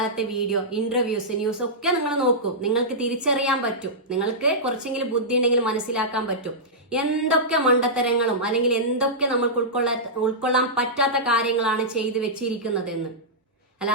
വീഡിയോ, ഇന്റർവ്യൂസ്, ന്യൂസ് ഒക്കെ നിങ്ങൾ നോക്കൂ. നിങ്ങൾക്ക് തിരിച്ചറിയാൻ പറ്റും. നിങ്ങൾക്ക് കുറച്ചെങ്കിലും ബുദ്ധി ഉണ്ടെങ്കിൽ മനസ്സിലാക്കാൻ പറ്റും എന്തൊക്കെ മണ്ടത്തരങ്ങളും അല്ലെങ്കിൽ എന്തൊക്കെ നമ്മൾക്ക് ഉൾക്കൊള്ളാൻ പറ്റാത്ത കാര്യങ്ങളാണ് ചെയ്തു വെച്ചിരിക്കുന്നതെന്ന്.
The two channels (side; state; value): both; normal; correlation -0.13